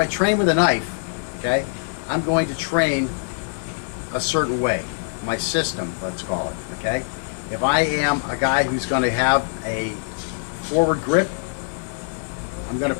train with a knife, okay, I'm going to train a certain way, my system, let's call it. Okay, if I am a guy who's going to have a forward grip, I'm going to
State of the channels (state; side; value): silent; right; digital silence